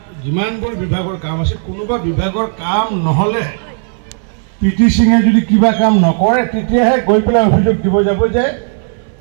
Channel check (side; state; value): left; silent; 60 dB below the other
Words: যিমানবোৰ বিভাগৰ কাম আছে, কোনোবা বিভাগৰ কাম নহ'লে PT সিঙে যদি কিবা কাম নকৰে তেতিয়াহে গৈ পেলাই অভিযোগ দিব যাব যে